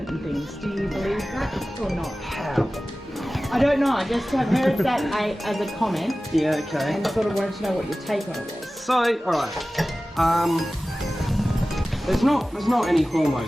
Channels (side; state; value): both; normal; correlation 0.96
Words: and things? Do you believe that or not? How? I don't know. I just have heard that as a comment. Yeah, okay. And sort of wanted to know what your take on it was. So, alright. There's not any